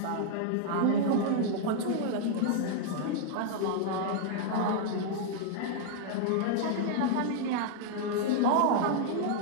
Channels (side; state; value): both; different; correlation -0.01